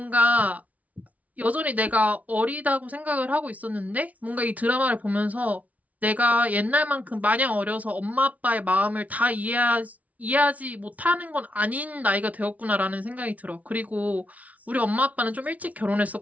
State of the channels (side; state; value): left; late; 0.071 ms